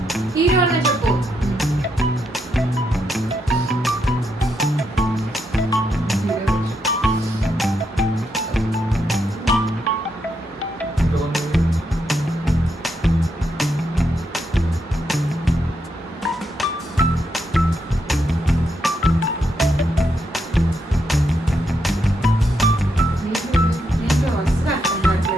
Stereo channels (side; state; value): both; normal; correlation 0.80